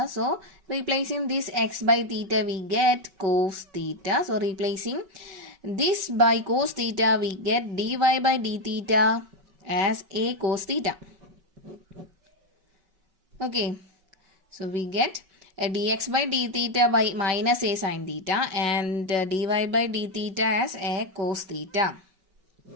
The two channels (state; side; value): late; left; 5.3 ms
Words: So replacing this x by theta we get cos theta. So replacing this by cos theta we get dy by d theta as a cos theta. Okay. So we get a dx by d theta by minus a sin theta and dy by d theta as a cos theta.